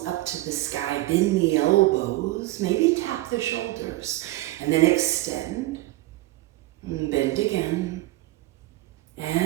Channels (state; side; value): quieter; left; 18.3 dB